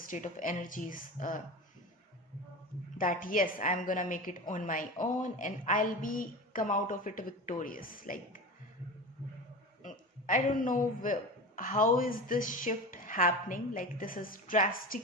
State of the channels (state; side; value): normal; both; correlation 0.29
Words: of energies, that yes, I'm gonna make it on my own and I'll be come out of it victorious. Like, I don't know how is this shift happening. Like, this is drastic